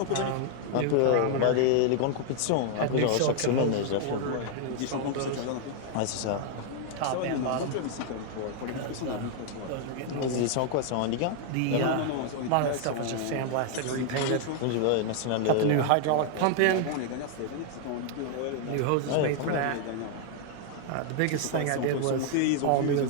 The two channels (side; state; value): both; different; correlation 0.00